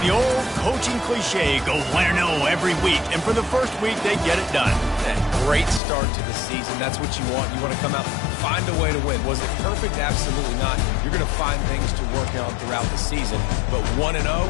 The old coaching cliche, go win or no every week. And for the first week, they get it done. Great start to the season. That's what you want. You want to come out, find a way to win. Was it perfect? Absolutely not. You're going to find things to work on throughout the season. But 1-0,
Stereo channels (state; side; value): drops out; right; at 5.8 s